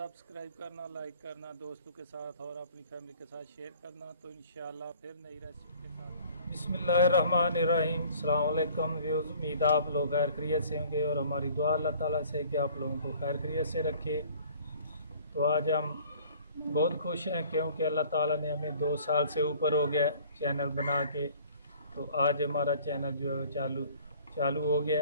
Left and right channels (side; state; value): both; inverted; correlation -0.52